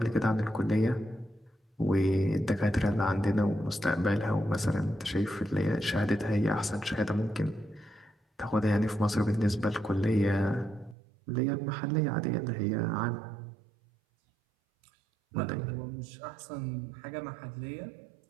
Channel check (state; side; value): drops out; left; at 11.0 s